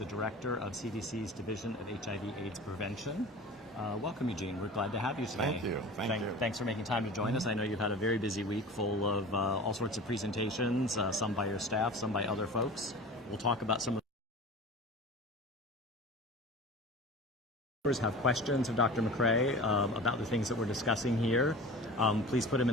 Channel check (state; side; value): normal; both; correlation 0.36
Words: director of CDC's Division of HIV/AIDS Prevention. Welcome, Eugene. We're glad to have you today. Thank you. Thank you. Thanks for making time to join us. I know you've had a very busy week full of all sorts of presentations, some by your staff, some by other folks. We'll talk about some of have questions of Dr. McCray about the things that we're discussing here. Please put them